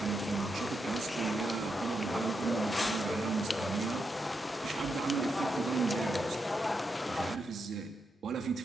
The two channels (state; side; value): normal; both; correlation 0.84